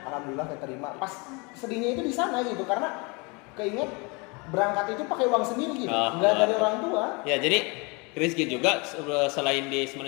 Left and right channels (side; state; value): right; quieter; 29.3 dB